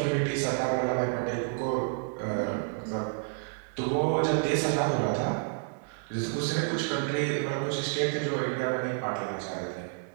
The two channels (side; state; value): left; silent; 58 dB below the other